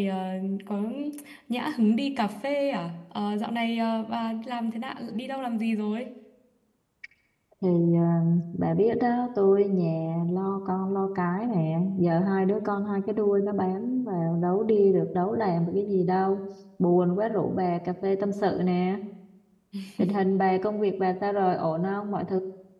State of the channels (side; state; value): both; identical; correlation 1.00